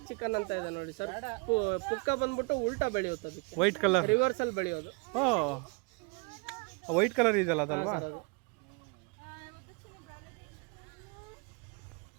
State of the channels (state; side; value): quieter; left; 31.5 dB